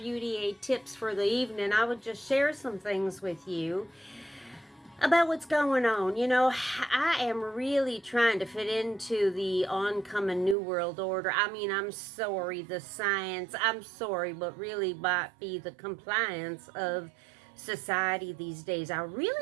aid tips for the evening, I would just share some things with you about what's going on. You know, I am really trying to fit into the oncoming New World Order. I mean, I'm sorry, the science, I'm sorry, but really might be the compliance of society these days. I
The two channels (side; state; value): left; drops out; at 10.6 s